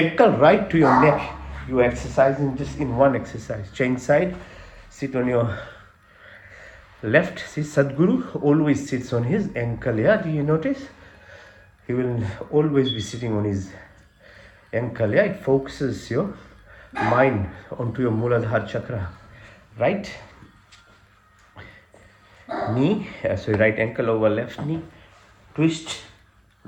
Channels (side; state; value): both; identical; correlation 1.00